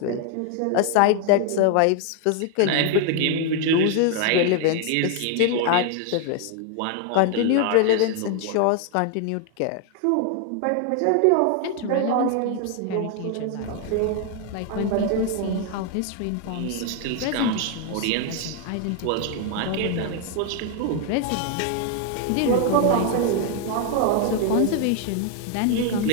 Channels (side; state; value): both; different; correlation 0.00